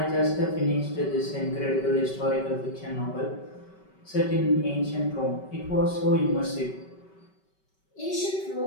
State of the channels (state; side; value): late; right; 5.2 ms